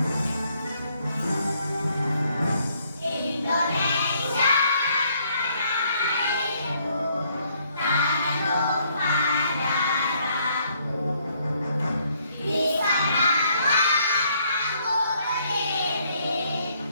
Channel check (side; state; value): both; inverted; correlation -0.69